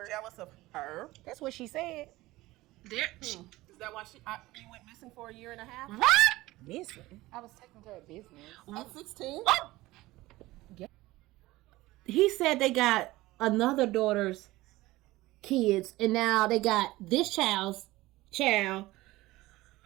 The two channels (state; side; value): quieter; left; 18.5 dB